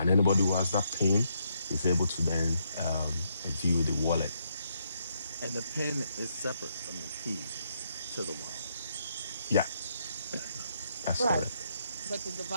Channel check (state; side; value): inverted; both; correlation -0.76